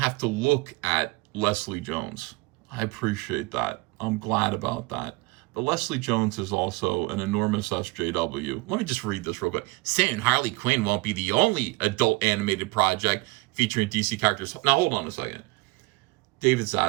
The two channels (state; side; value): quieter; left; 23.1 dB